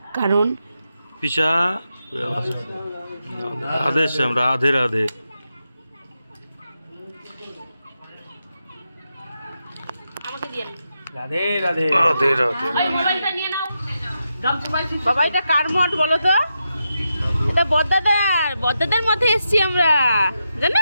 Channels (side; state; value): both; inverted; correlation -0.86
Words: কারণ রাধে রাধে। রাধে রাধে রাধে রাধে। বাবা এটা কার মঠ বলো তো? এটা বদ্দাদার মঠে এসছি আমরা,